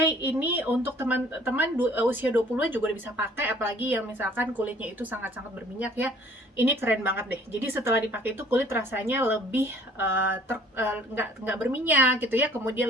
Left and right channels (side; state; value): both; normal; correlation 0.55